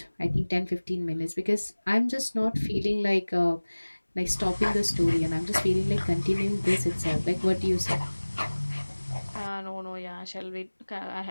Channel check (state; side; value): inverted; both; correlation -1.00